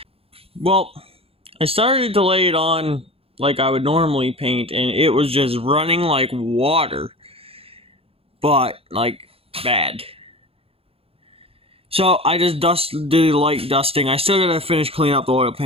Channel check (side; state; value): left; late; 0.28 ms